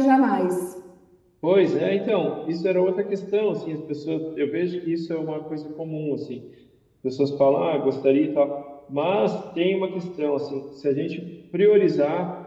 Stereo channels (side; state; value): both; identical; correlation 1.00